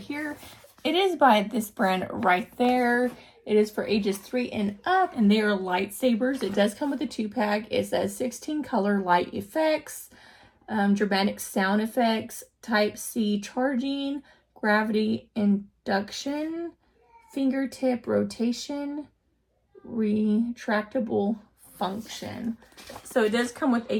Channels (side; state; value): both; identical; correlation 1.00